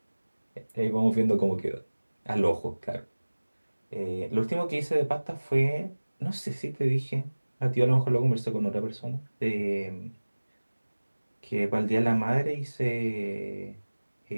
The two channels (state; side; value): inverted; both; correlation -1.00